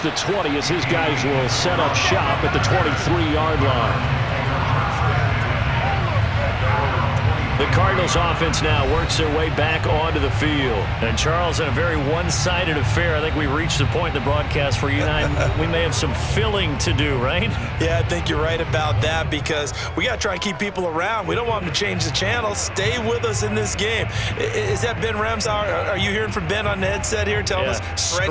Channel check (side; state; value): both; identical; correlation 1.00